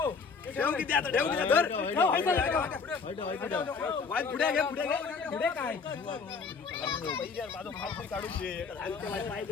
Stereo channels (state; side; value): quieter; right; 5.1 dB